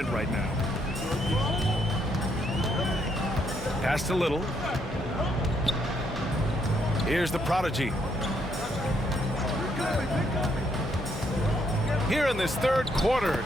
right now. Pass to Little. Here's the prodigy. Here in this third quarter,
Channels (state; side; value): normal; both; correlation 0.73